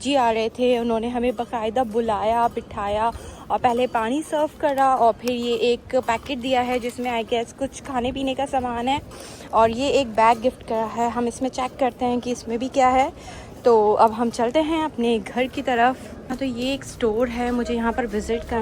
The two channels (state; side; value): identical; both; correlation 1.00